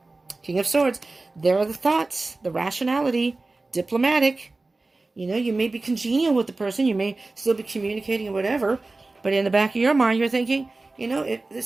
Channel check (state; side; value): quieter; left; 3.3 dB